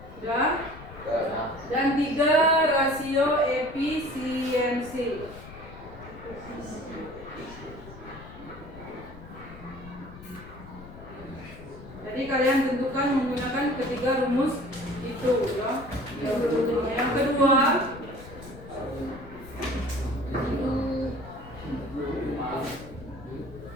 Ya. Dan 3, rasio efisiensi. Jadi kalian tentukan menggunakan ketiga rumus itu ya. Yang kedua,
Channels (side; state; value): left; noise; rumble, 16 dB below the sound